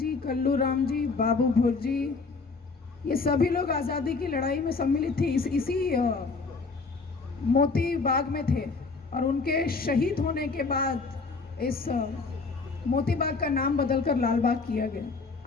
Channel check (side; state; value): right; quieter; 4.2 dB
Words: कल्लू राम जी, बाबू भुर जी, ये सभी लोग आज़ादी की लड़ाई में सम्मिलित थे, इसी मोती बाग में थे। और उनके शहीद होने के बाद इस मोती बाग का नाम बदलकर लाल बाग किया गया।